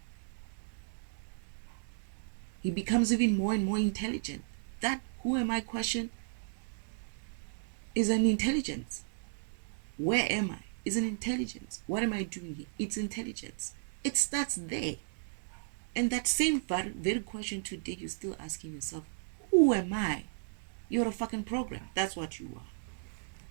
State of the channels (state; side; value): silent; left; digital silence